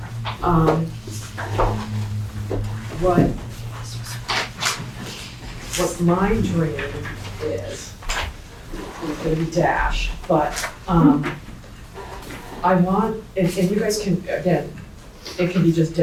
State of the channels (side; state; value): both; identical; correlation 1.00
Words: What my dream is, it's gonna be dashed, but, I want, and you guys can, again, it can be just